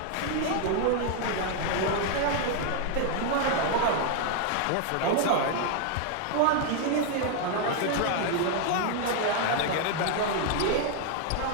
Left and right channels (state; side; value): different; both; correlation 0.00